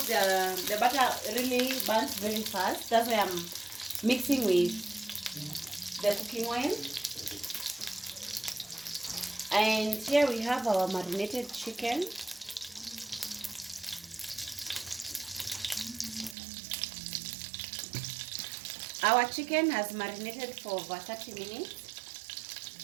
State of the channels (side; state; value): left; drops out; at 16.4 s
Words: the butter really burns very fast. That's why I'm mixing with the cooking oil. And here we have our marinated chicken. Our chicken has marinated for over 30 minutes.